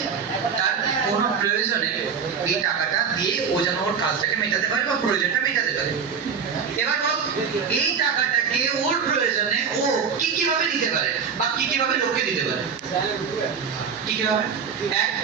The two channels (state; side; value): quieter; left; 6.5 dB